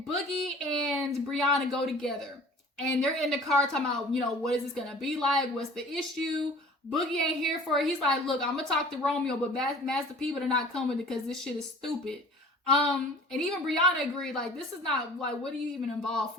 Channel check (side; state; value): both; normal; correlation 0.46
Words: Boogie and Brianna go together and they're in the car talking about, you know, what is this going to be like? What's the issue? Boogie ain't here for it. He's like, look, I'm going to talk to Romeo, but Master P are not coming because this shit is stupid. And even Brianna agreed, like, this is not, like, what are you even involved